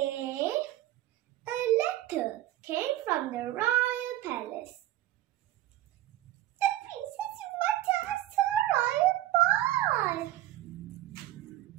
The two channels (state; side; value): quieter; left; 14.7 dB